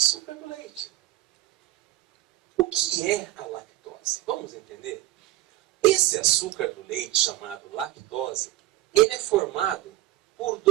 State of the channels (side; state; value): left; quieter; 16.2 dB